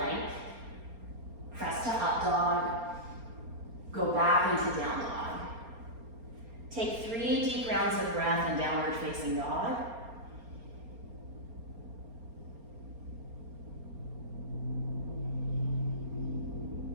Press to up dog. Go back into down dog. Take 3 deep rounds of breath in downward facing dog.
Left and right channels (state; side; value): late; left; 4.3 ms